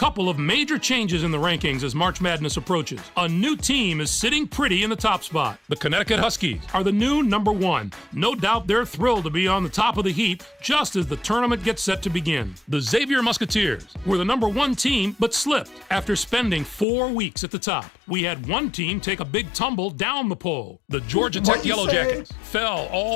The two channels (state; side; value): drops out; right; at 16.9 s